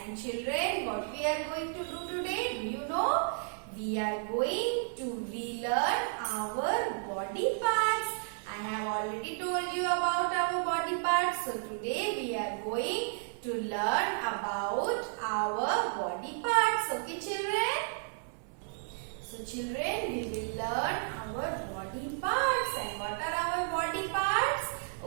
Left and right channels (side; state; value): left; silent; 56 dB below the other